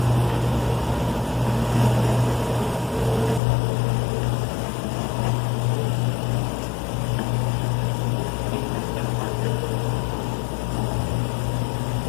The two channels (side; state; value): right; drops out; at 3.4 s